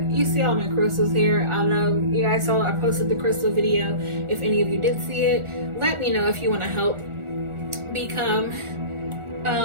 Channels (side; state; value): left; late; 1.4 ms